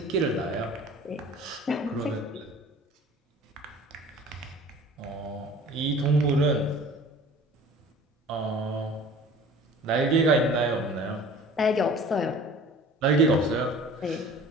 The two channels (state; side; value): normal; both; correlation 0.45